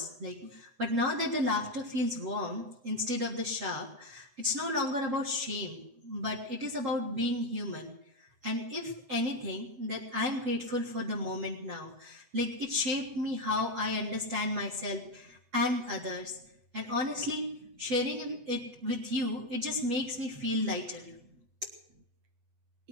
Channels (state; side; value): late; left; 8.0 ms